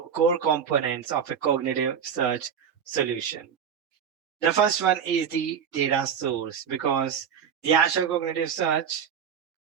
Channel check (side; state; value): left; quieter; 7.7 dB